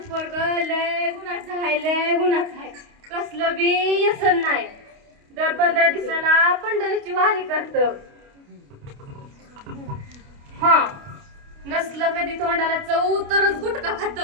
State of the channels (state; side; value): late; left; 29 ms